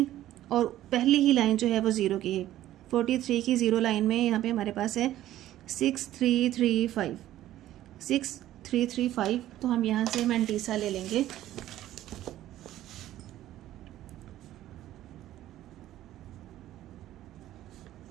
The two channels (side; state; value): left; quieter; 13.6 dB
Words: और पहली ही लाइन जो है वो ज़ीरो की है। 43 की ज़ीरो लाइन में यहाँ पे हमारे पास है 6335, 6335। तो हम यहाँ से मैंटीसा ले लेंगे।